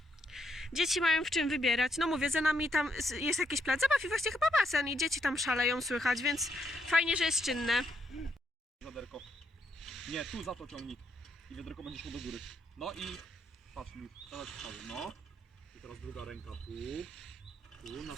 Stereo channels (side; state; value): both; normal; correlation 0.77